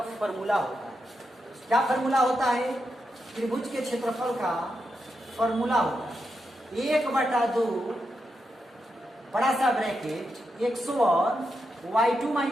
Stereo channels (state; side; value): normal; both; correlation 0.85